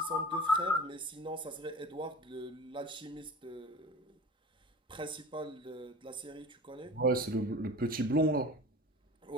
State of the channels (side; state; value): both; normal; correlation 0.38